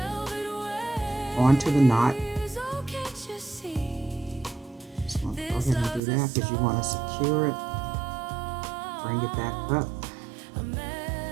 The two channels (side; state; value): left; drops out; at 6.0 s